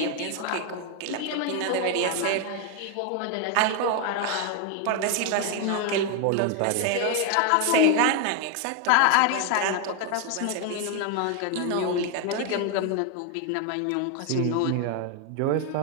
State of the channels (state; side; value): different; both; correlation 0.01